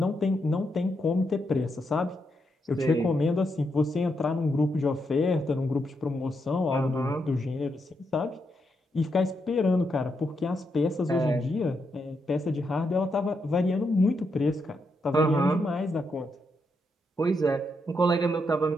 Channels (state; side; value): normal; both; correlation 0.81